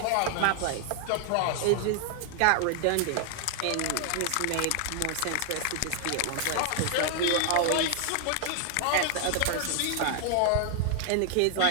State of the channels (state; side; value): different; both; correlation 0.00